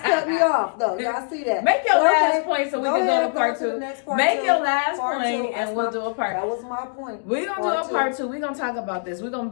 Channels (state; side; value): silent; right; digital silence